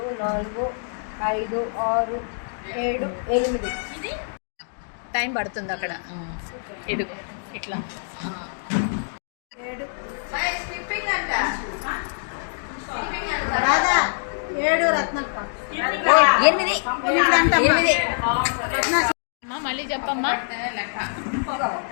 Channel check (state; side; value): silent; right; digital silence